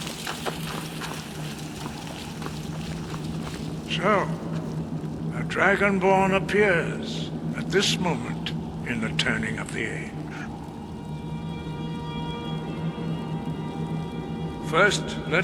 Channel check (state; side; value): identical; both; correlation 1.00